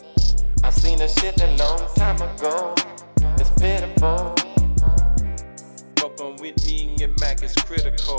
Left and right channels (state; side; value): inverted; both; correlation -1.00